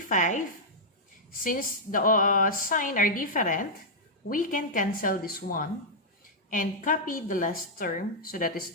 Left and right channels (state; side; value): normal; both; correlation -0.07